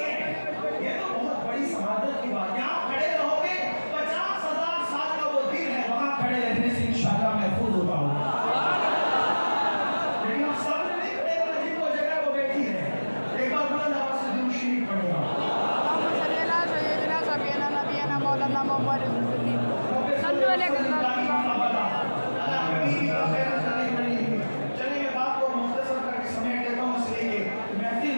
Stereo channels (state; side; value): inverted; both; correlation -1.00